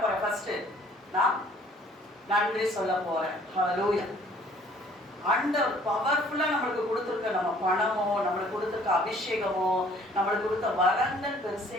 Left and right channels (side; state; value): both; normal; correlation 0.57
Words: போறேன், ஃபர்ஸ்ட் நான் நன்றி சொல்ல போறேன். ஹல்லேலூயா. ஆண்டவர் பவர்ஃபுல்லா நம்மளுக்கு கொடுத்துருக்க நம்ம பணமோ, நம்மளுக்கு கொடுத்துருக்க அபிஷேகமோ, நம்மளுக்கு கொடுத்த வரங்கள் பெருசே